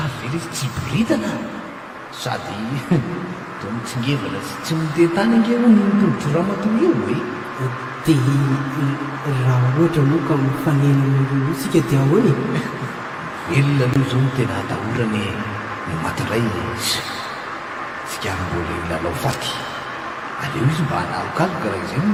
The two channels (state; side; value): identical; both; correlation 1.00